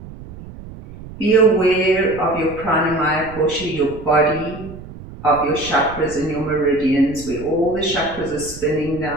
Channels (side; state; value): right; noise; rumble, 15 dB below the sound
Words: Be aware of your pranamaya kosha, your body, of your chakras and your meridians, where all the chakras are spinning